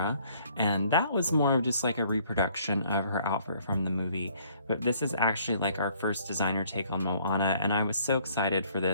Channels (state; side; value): inverted; both; correlation -0.62